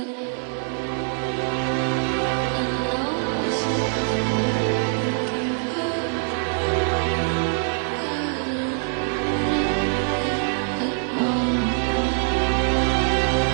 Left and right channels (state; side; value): silent; left; 59 dB below the other